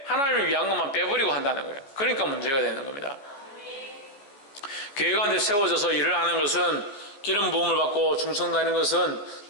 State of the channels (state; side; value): late; right; 14 ms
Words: 하나님을 위한 것만 빼버리고 한다는 거예요. 그러니까 문제가 되는 겁니다. 교회 가운데 세워져서 일을 하는 것은, 기름 부음을 받고 충성다는 것은